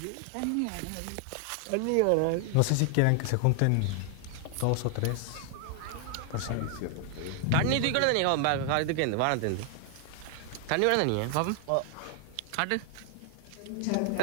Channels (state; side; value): different; both; correlation 0.00